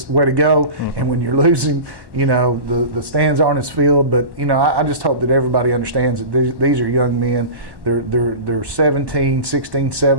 way to go. And when you're losing, the stands aren't as filled. But, I just hope that everybody understands that these are young men. They're 17, 16,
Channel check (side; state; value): left; late; 1.1 ms